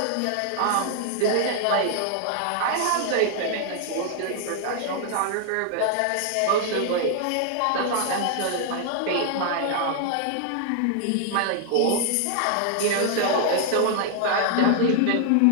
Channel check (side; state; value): both; different; correlation 0.00